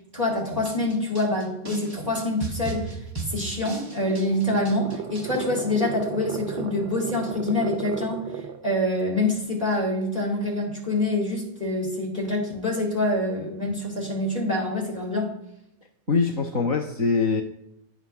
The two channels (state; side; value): late; left; 3.9 ms